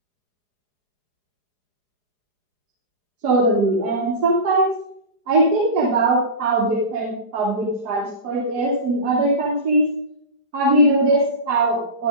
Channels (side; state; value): left; late; 4.8 ms